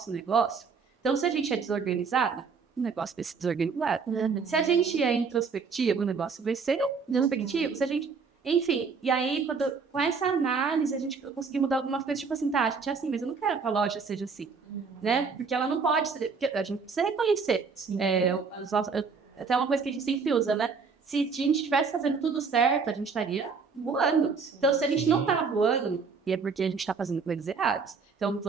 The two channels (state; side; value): quieter; left; 5.2 dB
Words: negócio, então, se a gente é desorganizada, o negócio vai ser desorganizado. Se a gente é introspectivo, o negócio vai ser introspectivo. Se a gente... Enfim, e aí, com essa análise, a gente conseguiu mudar algumas coisas, tipo assim, tá, a gente é assim, mas eu não quero que a loja seja assim, né? Porque ela não pode ser... Porque a gente precisa reconhecer. Até uma coisa que a gente sempre usa, né? Se a gente estivesse fazendo tudo certo, a gente estaria voando. Então, se a gente não tá voando, é porque a gente tá fazendo coisas erradas. Então,